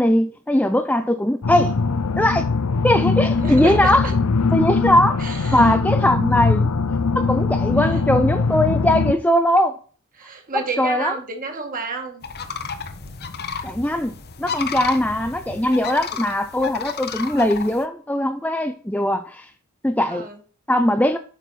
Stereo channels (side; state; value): both; normal; correlation 0.74